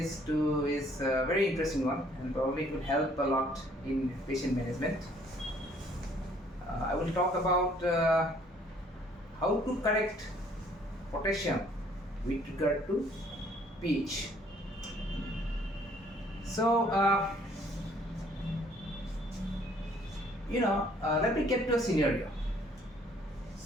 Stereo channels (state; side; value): normal; both; correlation 0.61